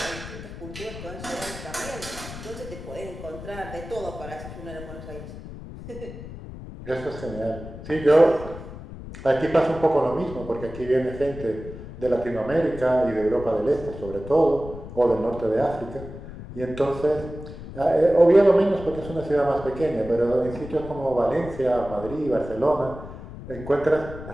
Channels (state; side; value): noise; left; rumble, 12 dB below the sound